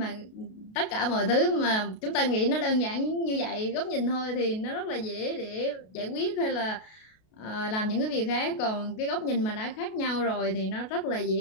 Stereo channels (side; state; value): right; late; 32 ms